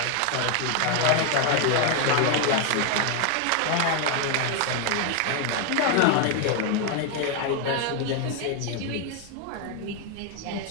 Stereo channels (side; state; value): both; different; correlation 0.00